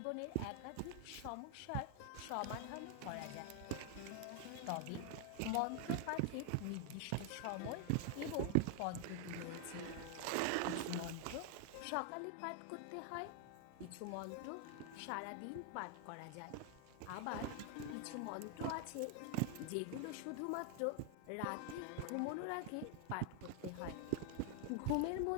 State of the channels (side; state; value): both; different; correlation 0.00